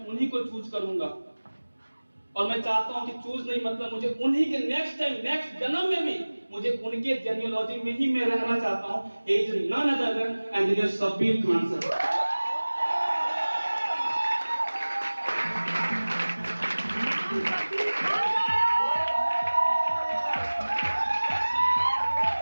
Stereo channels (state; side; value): inverted; both; correlation -1.00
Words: उन्हीं को चूज करूंगा। और मैं चाहता हूं कि चूज नहीं मतलब मुझे उन्हीं के नेक्स्ट टाइम, नेक्स्ट जन्म में भी मुझे उनके जेनियोलॉजी में ही मैं रहना चाहता हूं। Is none other than engineer Shabbir Khan sir.